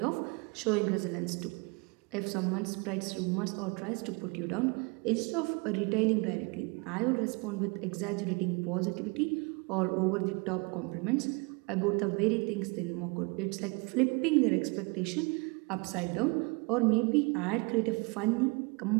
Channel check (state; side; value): quieter; left; 30.0 dB